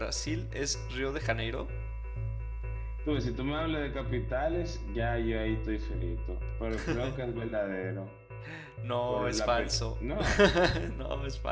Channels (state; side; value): identical; both; correlation 1.00